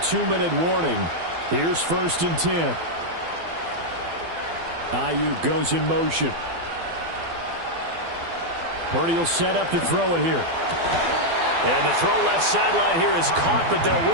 warning. Here's 1st and 10. Ayuk goes in motion. Purdy will set up to throw it here. And the throw left sideline here is caught, but they'll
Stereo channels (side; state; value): left; late; 12 ms